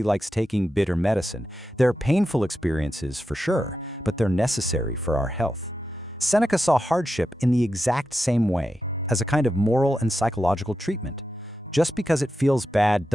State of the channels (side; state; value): both; normal; correlation 0.89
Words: likes taking bitter medicine. They're painful experiences for sure, but they're necessary for our health. Seneca saw hardship in the exact same way, as a kind of moral and psychological treatment. Just because it feels bad